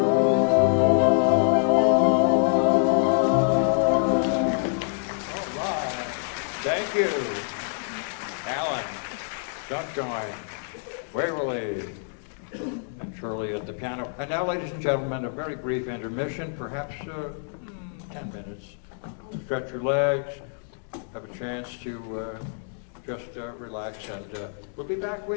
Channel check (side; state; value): right; silent; digital silence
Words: All right. Thank you, Alan, Sunshine, Waverly, and Shirley at the piano. And now, ladies and gentlemen, a very brief intermission, perhaps 10 minutes. Stretch your legs, have a chance to just relax, and we'll be back